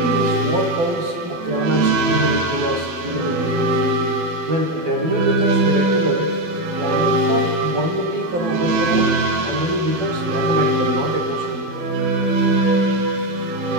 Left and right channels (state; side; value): late; left; 12 ms